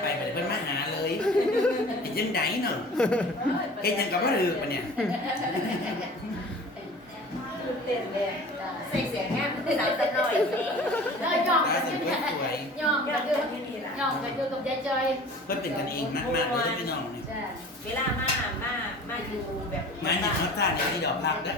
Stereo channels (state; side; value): normal; both; correlation 0.43